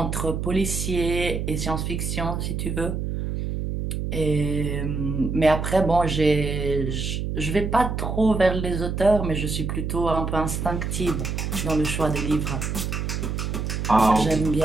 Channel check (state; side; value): noise; right; hum, 2 dB below the sound